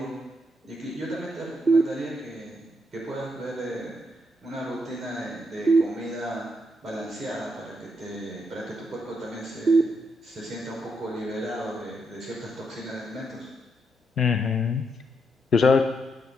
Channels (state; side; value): normal; both; correlation 0.79